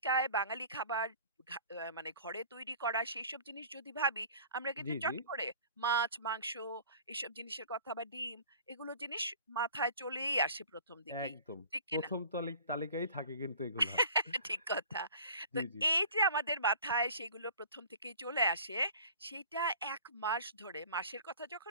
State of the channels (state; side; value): inverted; both; correlation -0.46